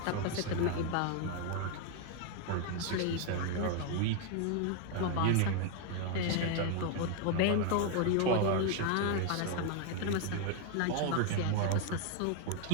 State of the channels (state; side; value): different; both; correlation 0.01